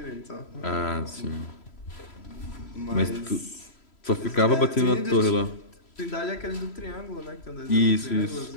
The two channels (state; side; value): late; right; 3.0 ms